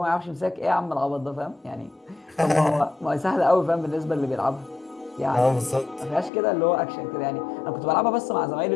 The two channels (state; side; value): drops out; right; at 6.3 s